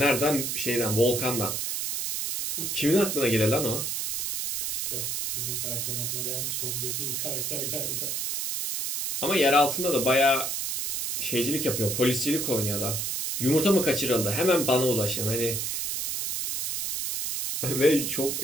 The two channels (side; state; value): right; noise; hiss, 2 dB below the sound